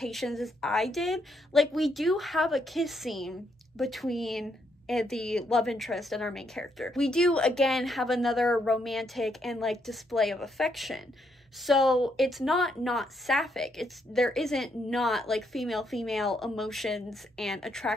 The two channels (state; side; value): normal; both; correlation 0.75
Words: as I did. Like, we do have a kiss scene between the love interest and our main character. We do, again, have another romantic and, like, display of affection. So it's not sapphic. There isn't not like female emotions and